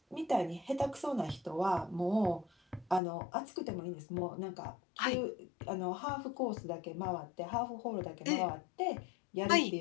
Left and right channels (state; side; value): drops out; right; at 3.0 s